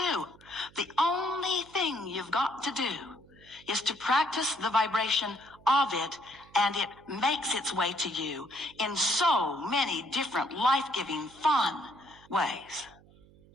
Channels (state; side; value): noise; right; hum, 25 dB below the sound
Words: the only thing you've got to do, is to practice the vibration of it, and it makes its way to you in so many different life-giving, fun ways.